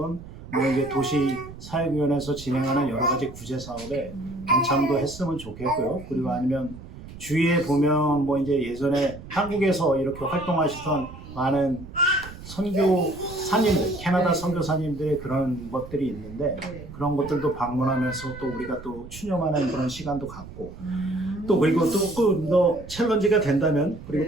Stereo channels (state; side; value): noise; right; rumble, 15 dB below the sound